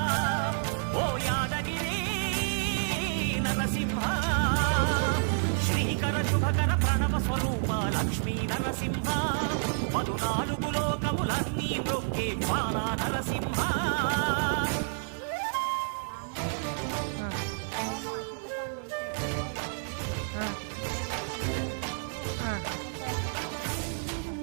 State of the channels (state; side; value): silent; left; digital silence